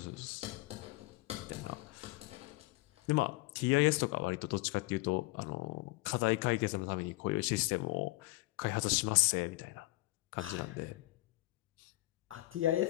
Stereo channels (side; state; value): right; quieter; 20.3 dB